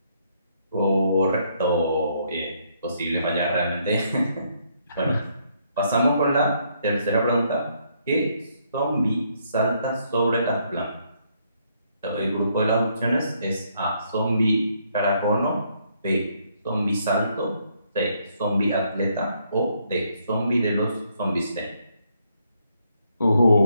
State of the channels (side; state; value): both; inverted; correlation -0.72